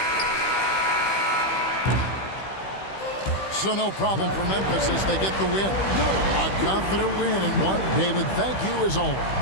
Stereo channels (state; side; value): late; right; 15 ms